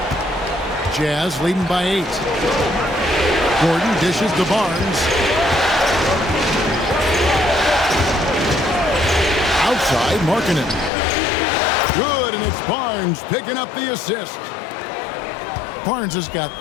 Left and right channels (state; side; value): drops out; right; at 10.9 s